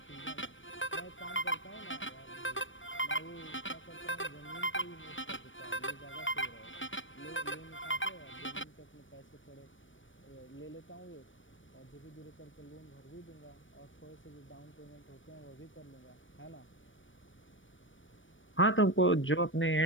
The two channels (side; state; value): right; late; 0.56 ms